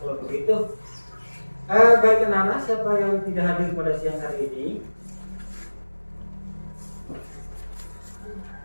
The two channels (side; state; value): both; inverted; correlation -1.00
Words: kalau begitu. Baik anak-anak, siapa yang tidak hadir pada siang hari ini?